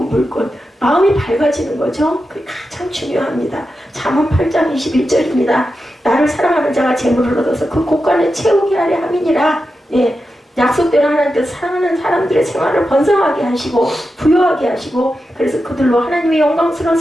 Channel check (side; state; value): both; normal; correlation 0.90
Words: 마음이 밝아지는 거죠. 그게 가장 중요합니다. 잠언 8장 21절입니다. 나를 사랑하는 자가 재물을 얻어서 그 곳간에 채우게 하려 함이니라. 예, 약속대로 하나님께서 사랑하는 사람들의 생활을 번성하게 하시고 부여하게 하시고, 그래서 그들로 하나님의 영광스러운